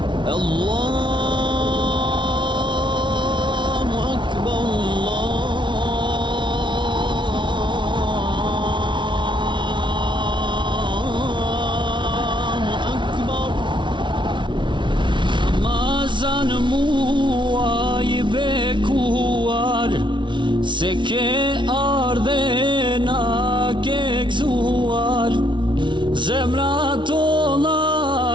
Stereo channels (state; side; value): late; left; 0.24 ms